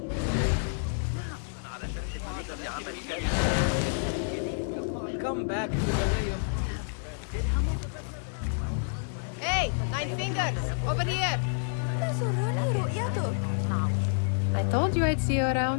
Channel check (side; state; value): right; silent; digital silence